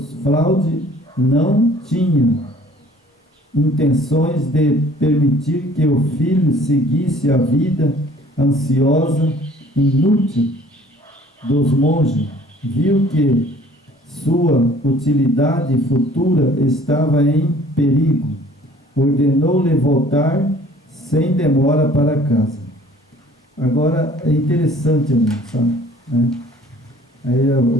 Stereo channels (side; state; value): both; normal; correlation 0.53